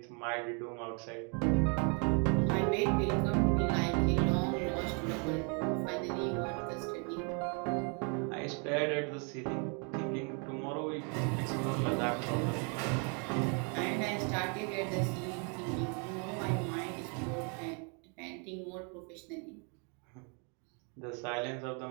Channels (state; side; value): quieter; left; 36.9 dB